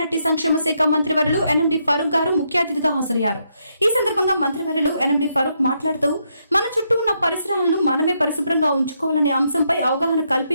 సంక్షేమ శాఖ మంత్రివర్యులు ఎన్ఎండి ఫరూక్ గారు ముఖ్య అతిథిగా హాజరయ్యారు. ఈ సందర్భంగా మంత్రివర్యులు ఎన్ఎండి ఫరూక్ మాట్లాడుతూ మన చుట్టూ ఉన్న పరిసరాలను మనమే పరిశుభ్రంగా ఉంచుకోవాలనే అంశంపై అవగాహన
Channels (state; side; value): inverted; both; correlation -0.78